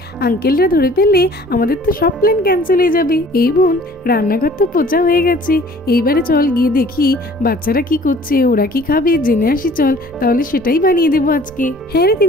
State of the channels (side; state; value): both; normal; correlation 0.52